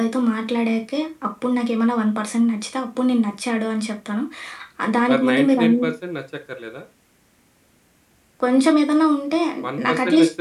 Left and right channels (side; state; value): both; identical; correlation 1.00